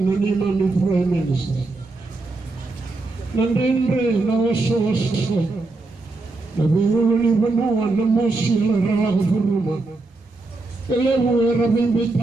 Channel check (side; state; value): left; quieter; 3.3 dB